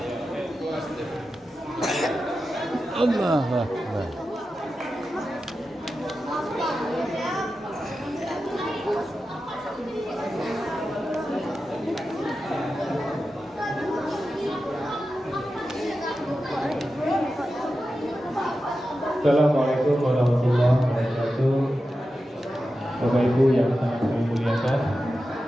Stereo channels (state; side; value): normal; both; correlation 0.91